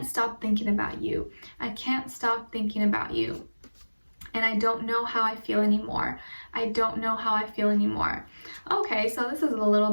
stop thinking about you. I can't stop thinking about you. And I don't know how I feel anymore. I don't know how I feel anymore. Okay, so this is a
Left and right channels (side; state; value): both; inverted; correlation -1.00